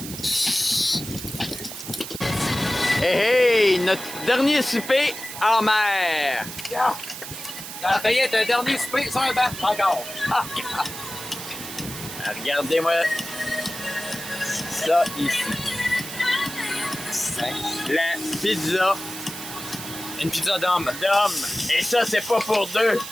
Hey, hey, notre dernier souper en mer. Ça a failli être un dernier souper sur un banc, encore. Regardez-moi ça ici. La pizza Une pizza d'homme. d'homme. Et ça, c'est pas pour deux.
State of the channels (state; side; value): noise; right; hiss, 10 dB below the sound